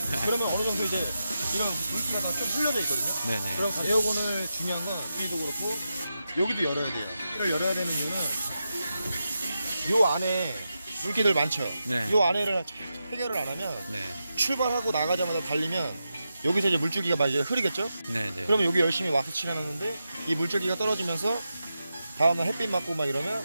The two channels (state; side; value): inverted; both; correlation -0.89